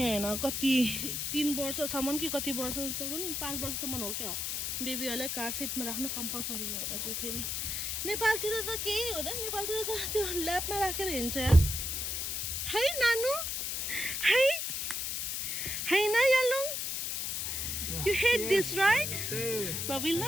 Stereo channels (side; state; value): left; noise; hiss, 2 dB below the sound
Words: होइन कति 3 वर्षसम्म कि कति वर्षसम्म 5 वर्षसम्म हो क्या बेबीहरूलाई कार सिटमा राख्नु कम्पलसरी हो यता चाहिँ फेरि नेपालतिर त केही हुँदैन नेपालतिर त त्यो ल्याबमा राखेर हिँड्छ यार है नानु है न यालुङ You hate this, right? But we